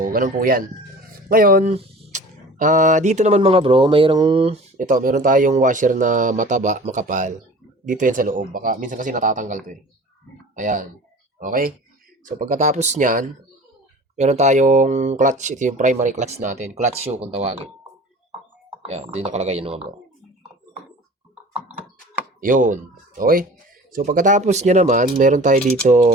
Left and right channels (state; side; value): normal; both; correlation 0.42